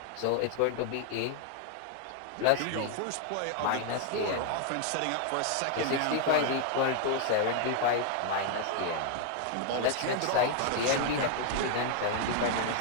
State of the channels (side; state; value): both; different; correlation 0.00